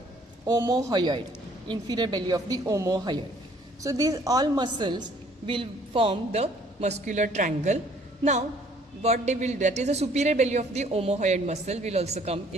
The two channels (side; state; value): both; normal; correlation 0.60